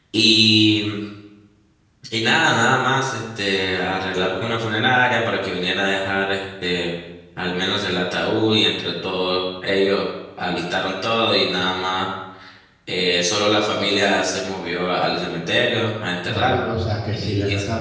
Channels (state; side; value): identical; both; correlation 1.00